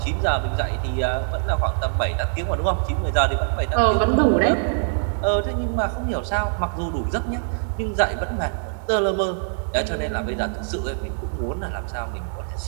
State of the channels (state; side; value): silent; left; digital silence